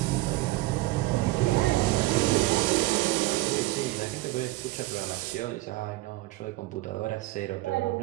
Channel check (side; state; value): left; quieter; 19.6 dB